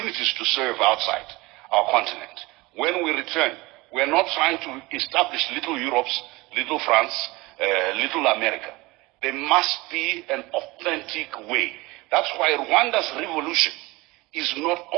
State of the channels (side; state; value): left; quieter; 22.3 dB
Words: to serve outside our continent, when we return, we are not trying to establish little Europe's, little France, little America. There must be an authentic way. That's why Rwanda's revolution is not